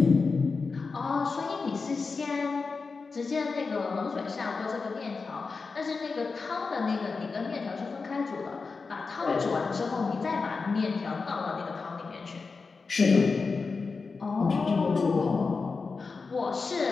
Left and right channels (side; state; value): right; quieter; 4.5 dB